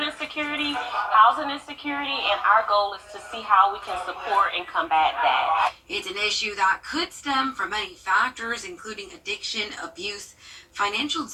insecurity, housing insecurity, and our goal is to see how we can support and combat that. It's an issue that could stem from many factors, including addiction, abuse, financial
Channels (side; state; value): both; identical; correlation 1.00